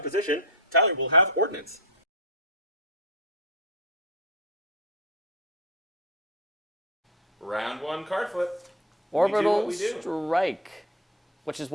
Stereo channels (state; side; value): normal; both; correlation 0.20